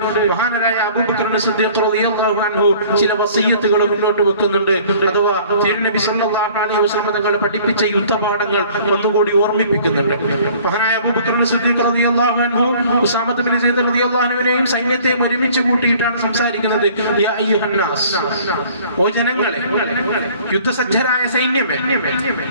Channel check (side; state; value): both; inverted; correlation -0.52